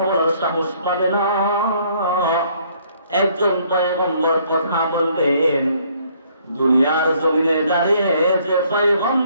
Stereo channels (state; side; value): inverted; both; correlation -0.64